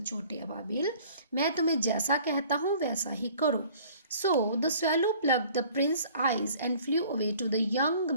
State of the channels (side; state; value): both; inverted; correlation -0.51